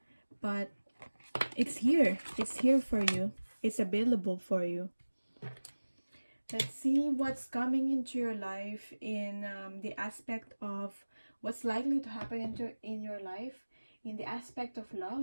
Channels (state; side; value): inverted; both; correlation -1.00